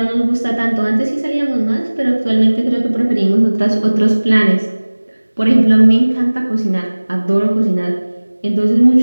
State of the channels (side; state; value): both; inverted; correlation -1.00